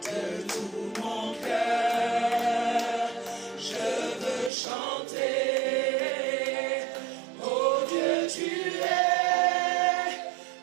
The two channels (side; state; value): left; drops out; at 4.5 s